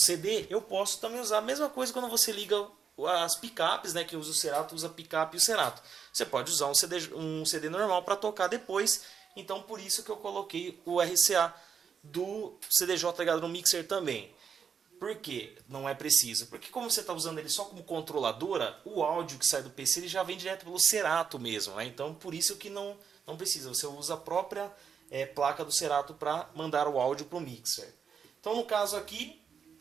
eu posso também usar a mesma coisa quando você liga as picapes, né? Que usa o Serato, usa a picape e o Serato. Você pode usar um CD normal para tocar depois. Então por isso que eu coloquei o RCA do CDJ ligado no mixer também. Por que não é preciso? Porque como você está usando ele só como controladora, o áudio que sai do PC ele já vem direto pelo Serato mesmo, né? Então por isso que não precisa. Você usa a própria placa do Serato para mandar o áudio para o mixer. Então no caso aqui,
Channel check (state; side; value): quieter; left; 6.9 dB